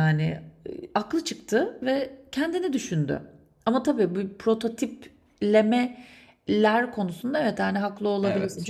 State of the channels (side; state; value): both; identical; correlation 1.00